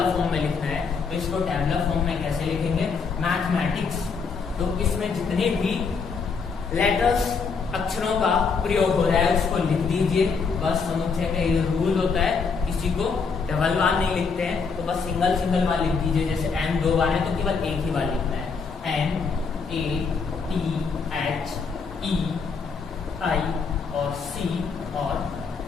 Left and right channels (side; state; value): right; quieter; 5.3 dB